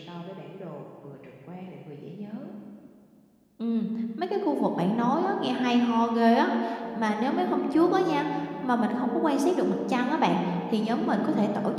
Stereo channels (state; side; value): identical; both; correlation 1.00